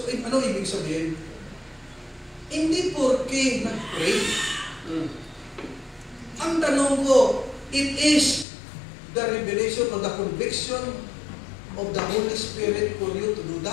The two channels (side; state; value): right; drops out; at 8.5 s